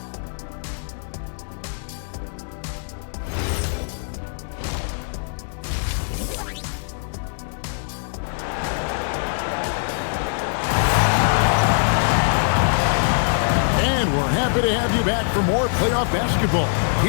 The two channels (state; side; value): silent; right; digital silence